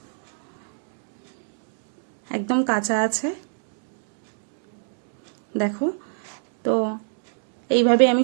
একদম কাঁচা আছে। দেখো, তো এইভাবে আমি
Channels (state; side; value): silent; left; digital silence